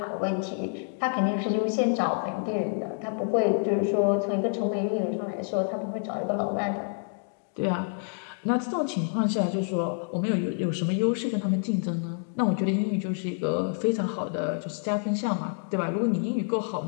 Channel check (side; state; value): right; silent; 59 dB below the other